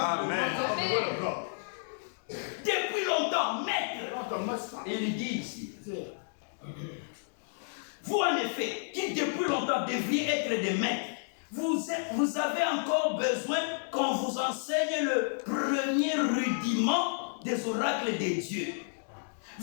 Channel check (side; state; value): right; silent; digital silence